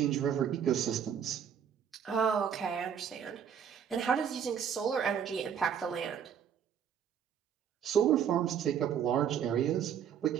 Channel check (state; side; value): quieter; left; 8.3 dB